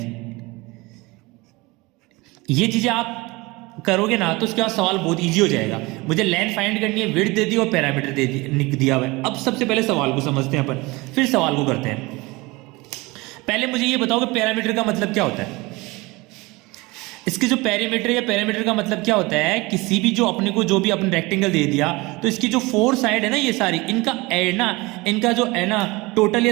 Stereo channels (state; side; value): quieter; left; 23.2 dB